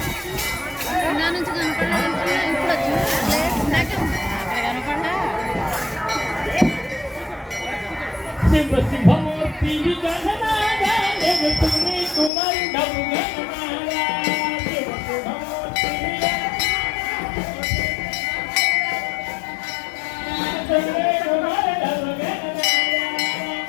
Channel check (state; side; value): drops out; right; at 12.3 s